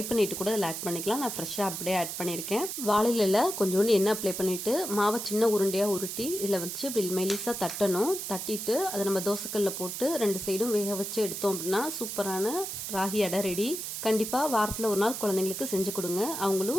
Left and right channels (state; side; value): noise; right; hiss, 5 dB below the sound